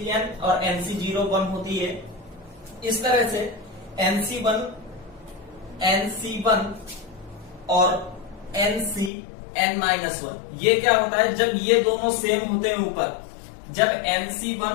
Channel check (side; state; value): right; drops out; at 9.1 s